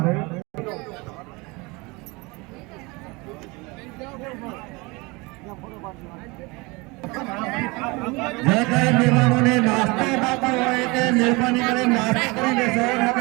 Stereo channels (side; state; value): left; quieter; 25.7 dB